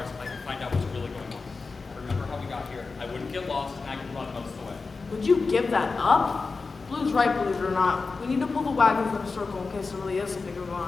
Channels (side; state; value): right; quieter; 4.2 dB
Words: I can find out what's really going on. I remember how we got here. I wouldn't get lost, and I could run most of the way. Would you give that up? Blue's right, believe it or not. We need to pull the wagons in a circle in case there really is something going